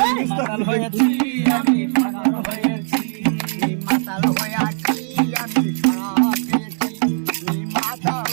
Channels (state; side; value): silent; left; digital silence